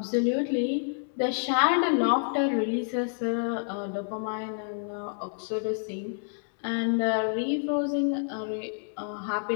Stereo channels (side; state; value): right; silent; digital silence